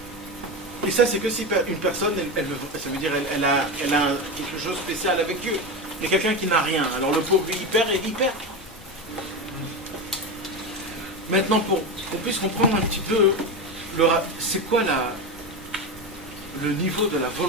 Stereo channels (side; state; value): both; normal; correlation 0.18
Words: Et ça, c'est que si une personne, ça veut dire elle a quelque chose de spécial avec Dieu. Il y a quelqu'un qui n'a rien. Alors le pauvre, lui, il perd et il perd. Maintenant, pour qu'on puisse comprendre un petit peu, c'est quoi le niveau de la